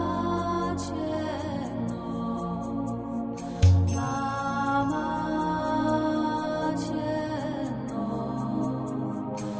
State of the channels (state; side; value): identical; both; correlation 1.00